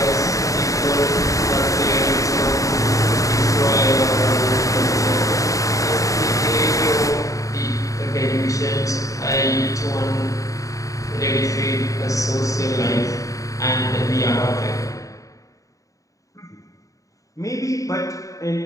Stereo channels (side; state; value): right; late; 0.16 ms